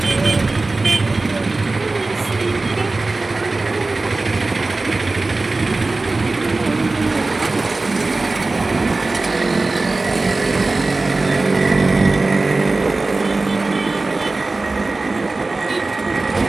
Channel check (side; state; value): left; quieter; 3.3 dB